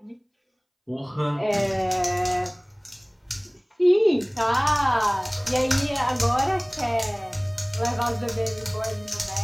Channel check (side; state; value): both; identical; correlation 1.00